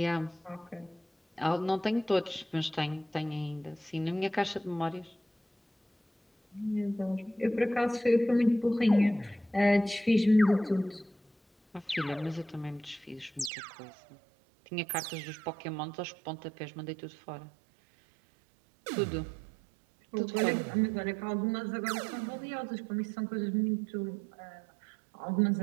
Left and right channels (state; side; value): drops out; left; at 13.5 s